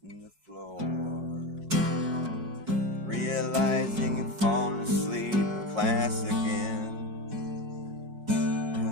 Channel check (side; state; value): left; late; 4.6 ms